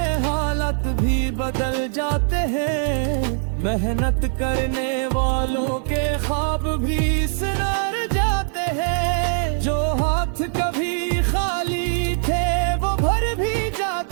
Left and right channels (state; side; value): silent; left; digital silence